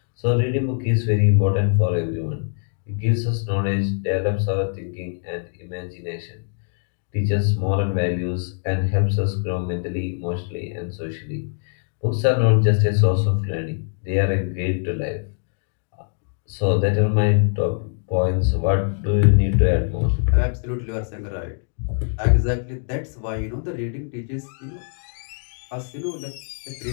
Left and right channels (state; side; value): silent; right; digital silence